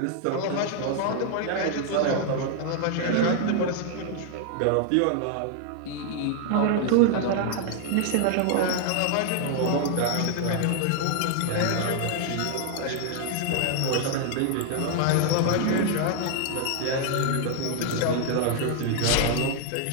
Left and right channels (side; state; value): both; different; correlation 0.00